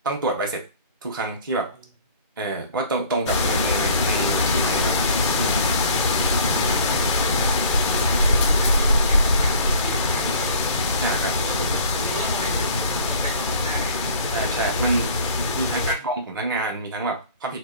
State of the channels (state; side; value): inverted; both; correlation -0.48